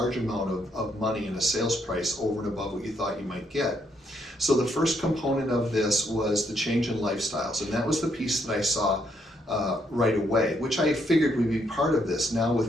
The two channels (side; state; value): both; normal; correlation 0.74